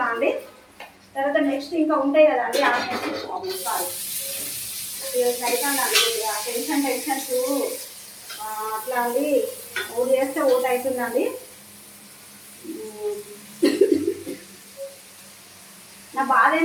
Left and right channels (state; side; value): identical; both; correlation 1.00